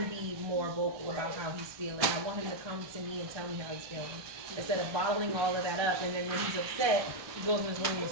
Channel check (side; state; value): left; late; 1.2 ms